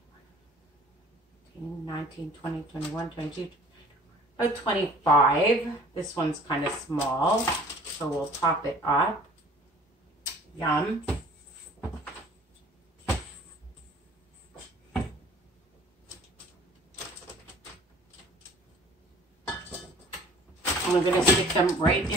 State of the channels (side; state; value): both; normal; correlation 0.51